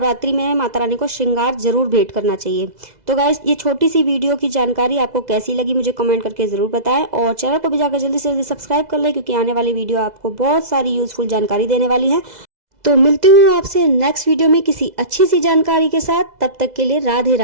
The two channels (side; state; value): left; late; 2.0 ms